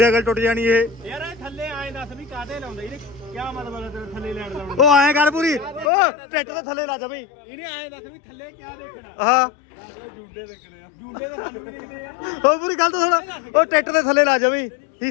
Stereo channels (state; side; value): drops out; right; at 5.9 s